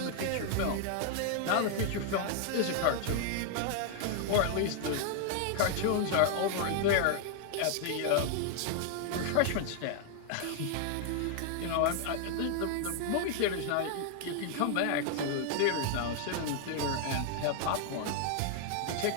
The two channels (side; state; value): both; different; correlation 0.00